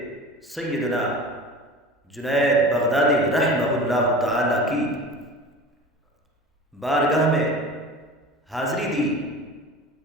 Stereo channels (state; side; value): normal; both; correlation 0.36